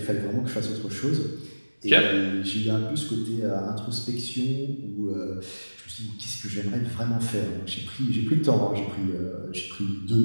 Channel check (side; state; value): both; inverted; correlation -1.00